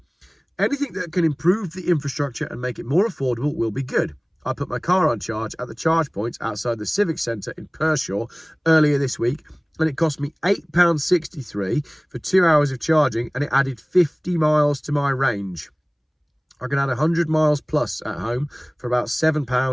anything that can improve the infrastructure and make it more affordable will be good. I put my car on charge at the charge points outside the Civic Centre in Pershore earlier this week, and it cost me £8.63 for 2 hours of charging, and it added 50 miles to my range. I can add 100 miles plus at home for about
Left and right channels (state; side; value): identical; both; correlation 1.00